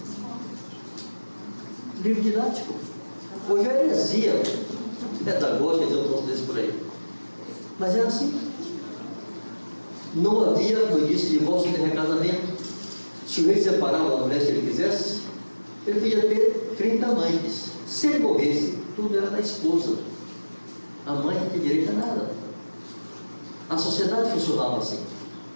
Livro didático. Hoje é heresia pedagógica, dizer um troço desse por aí. Mas era assim. Não havia, como eu disse, divórcio nem recasamento. Se o rei separava da mulher se ele quisesse, ele podia ter 30 amantes. Se ele morresse, tudo era da esposa. A mãe não tinha direito a nada. A sociedade funcionava assim.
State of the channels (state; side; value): inverted; both; correlation -1.00